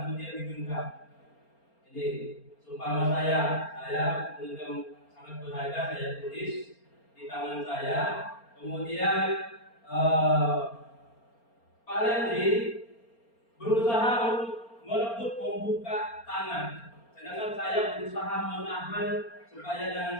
kemudian digenggam. Jadi seumpama saya menggenggam sangat berharga, saya tulis di tangan saya. Kemudian Pak Lendri berusaha untuk merebut membuka tangan, sedangkan saya berusaha menahan supaya jangan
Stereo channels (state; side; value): late; right; 4.3 ms